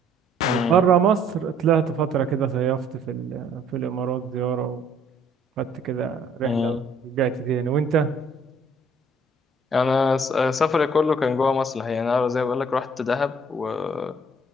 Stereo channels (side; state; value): both; normal; correlation 0.60